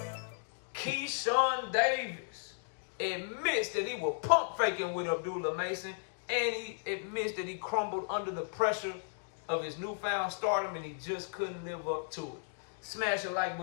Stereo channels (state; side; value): silent; right; digital silence